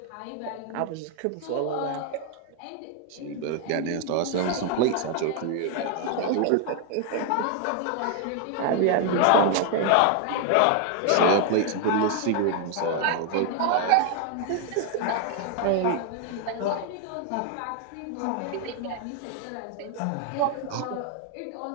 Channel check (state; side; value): different; both; correlation 0.00